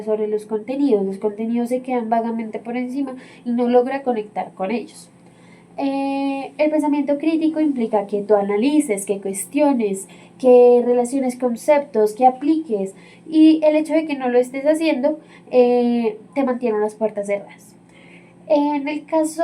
sobre los contenidos. Los contenidos se quedan vagamente por encima y no logra conectar con ellos. El pensamiento crítico implica que tú analices, que cuestiones, que relaciones conceptos, que apliques, y el hecho de que no lo estés haciendo te mantiene las puertas cerradas. En el caso,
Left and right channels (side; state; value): both; identical; correlation 1.00